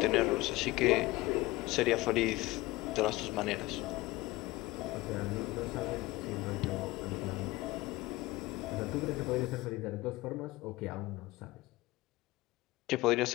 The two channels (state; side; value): quieter; right; 20.0 dB